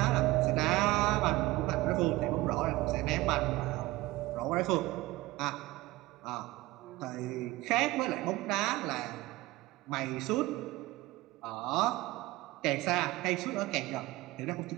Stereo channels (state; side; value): quieter; left; 19.1 dB